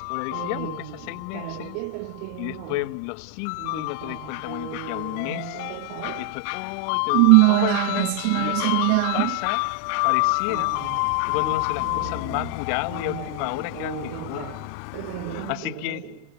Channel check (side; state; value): both; different; correlation 0.00